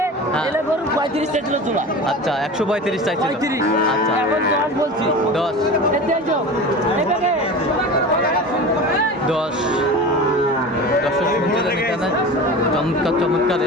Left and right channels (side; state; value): both; normal; correlation 0.32